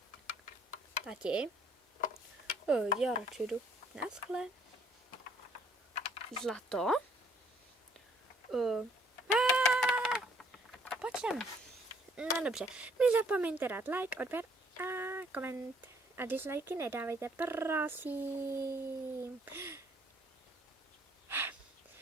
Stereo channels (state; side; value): normal; both; correlation 0.63